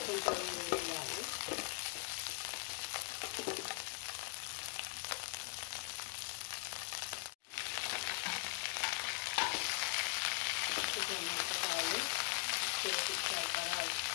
కొంచెం వేయాలి. ఇట్లా మిరపకాయలు చేసి సరిపడా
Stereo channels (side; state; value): right; quieter; 32.1 dB